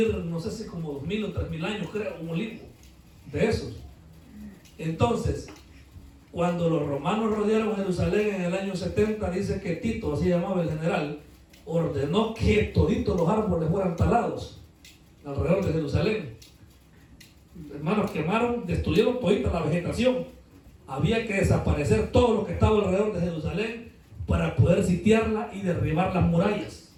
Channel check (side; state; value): both; identical; correlation 1.00